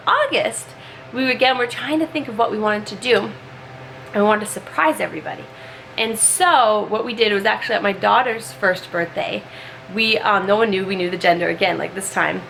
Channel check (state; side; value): identical; both; correlation 1.00